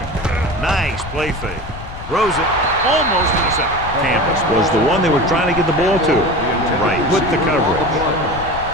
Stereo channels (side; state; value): left; noise; rumble, 11 dB below the sound